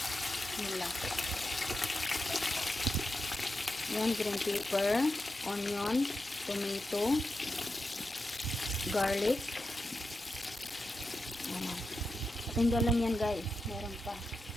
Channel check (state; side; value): normal; both; correlation 0.89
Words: Nila. Yan, green pepper, onion, tomato, garlic. Ayan. Tinggal lang yan guys. Meron pa.